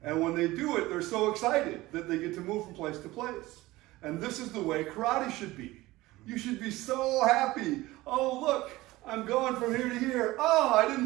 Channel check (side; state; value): left; quieter; 18.8 dB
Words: And when they do it, they're so excited that they get to move from place to place. And this is the way karate should be. You should be so happy. Oh, look, I'm going from here to here. Oh, I